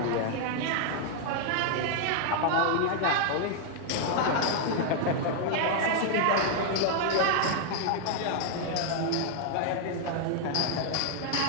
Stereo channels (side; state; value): both; different; correlation 0.00